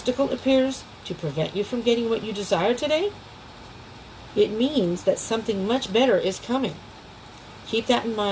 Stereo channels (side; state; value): both; identical; correlation 1.00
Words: appears to prevent you from getting what you desire today, it means that something much better is coming. Keep that in